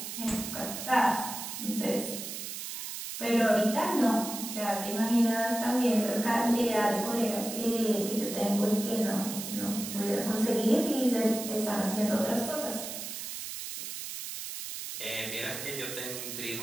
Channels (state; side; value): noise; right; hiss, 7 dB below the sound